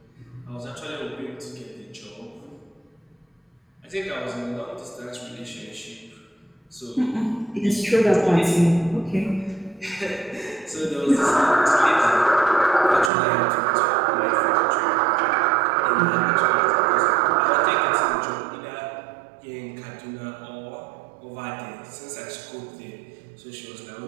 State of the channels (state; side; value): drops out; left; at 13.1 s